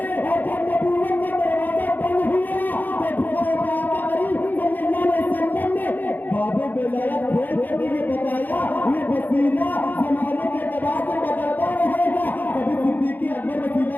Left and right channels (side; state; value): right; late; 0.086 ms